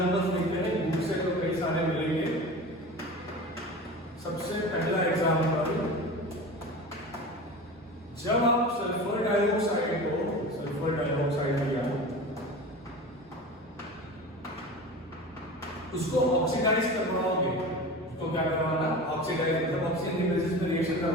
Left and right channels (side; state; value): both; normal; correlation 0.33